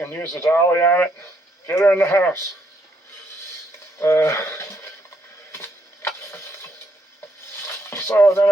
use the dolly on it, get her in the house. So then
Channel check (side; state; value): both; normal; correlation 0.74